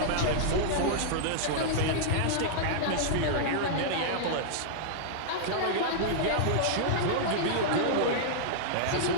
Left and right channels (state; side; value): different; both; correlation -0.02